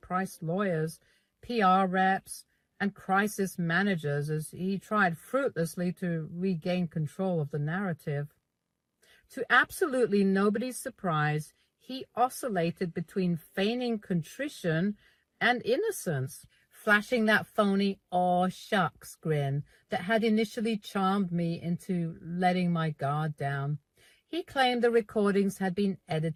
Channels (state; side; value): identical; both; correlation 1.00